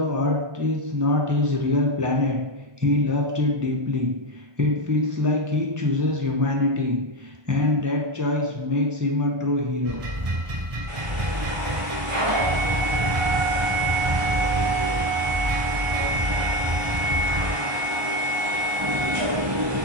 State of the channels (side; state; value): left; late; 1.2 ms